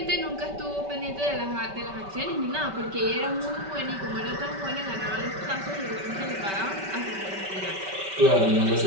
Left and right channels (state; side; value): late; left; 5.2 ms